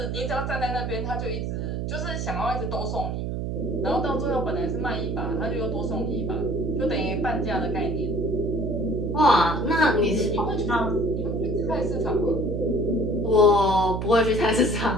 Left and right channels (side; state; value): right; noise; hum, 2 dB below the sound